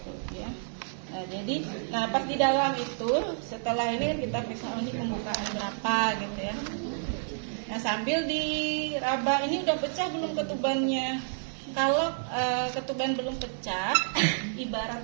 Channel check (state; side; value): silent; left; 58 dB below the other